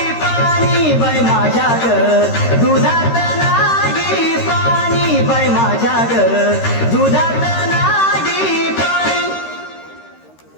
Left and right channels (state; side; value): late; right; 13 ms